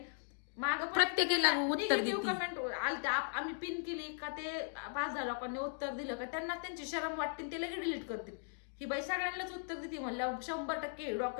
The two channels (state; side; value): silent; right; digital silence